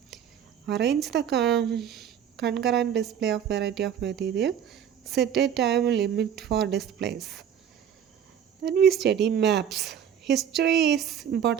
Arrange the concurrent display of variety of material. Set a time limit for displays. Then we study maps. History is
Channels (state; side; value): quieter; left; 8.9 dB